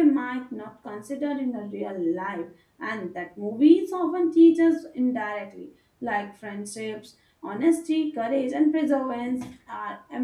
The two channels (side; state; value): both; identical; correlation 1.00